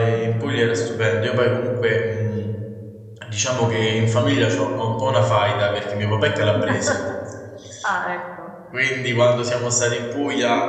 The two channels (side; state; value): both; identical; correlation 1.00